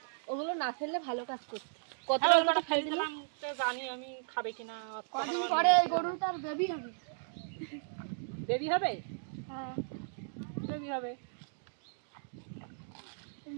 ওগুলো না ফেললে ভালো কাজ করতে। হ্যাঁ, ওই কটা কতটা ফেলে দিলাম তো জানি আমি খাবে কিনা। কদিন পরে এই গরুটার বেবি হবে বেবি হবে হ্যাঁ বেবি হবে।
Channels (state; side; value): silent; left; digital silence